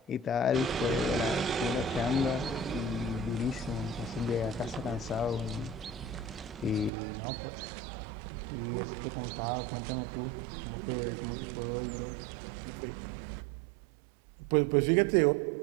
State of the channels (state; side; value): drops out; left; at 6.9 s